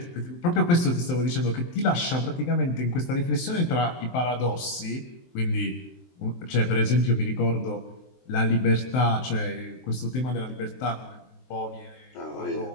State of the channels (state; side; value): late; right; 23 ms